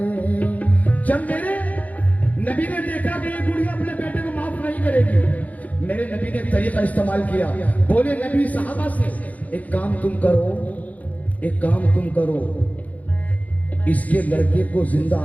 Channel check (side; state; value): right; late; 0.074 ms